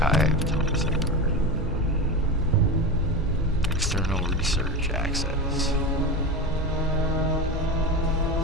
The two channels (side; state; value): both; normal; correlation 0.23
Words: Thomas Eckhart. External research access.